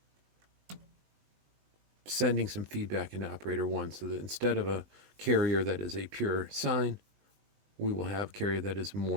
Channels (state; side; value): late; left; 20 ms